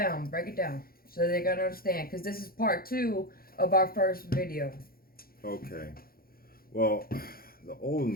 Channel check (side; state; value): right; late; 0.43 ms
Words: so they're gonna understand. Because this is part 2 of our first video. Okay. Well, the old